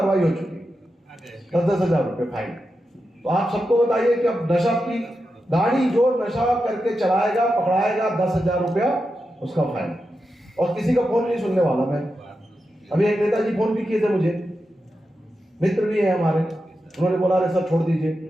हो चुकी, 10,000 रुपये फाइन। तो आप सबको बताइए कि अब नशा की गाड़ी जो नशा करके चलाएगा पकड़ाएगा 10,000 रुपया उसका फाइन, और किसी का फोन नहीं सुनने वाला मैं। अभी एक नेताजी फोन भी किए थे मुझे, मित्र भी है हमारे, उन्होंने बोला अरे सर छोड़ दीजिए।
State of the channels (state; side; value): normal; both; correlation 0.89